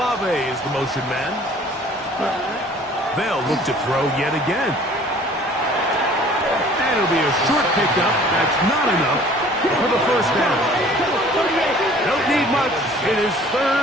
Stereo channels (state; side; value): normal; both; correlation 0.51